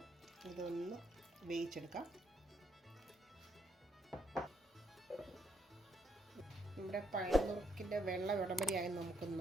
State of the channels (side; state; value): both; normal; correlation 0.75